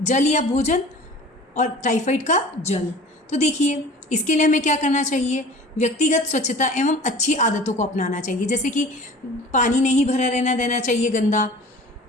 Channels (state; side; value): normal; both; correlation 0.42